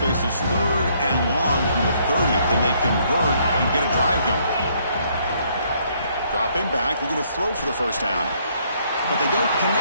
3rd and long from the 30. Can they convert and get a drive going? Dropping back, looking to throw for the first down. But they don't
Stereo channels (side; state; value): both; inverted; correlation -0.68